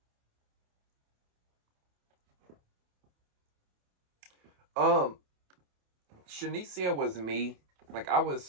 Shanicia was me. Like, I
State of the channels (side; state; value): left; late; 28 ms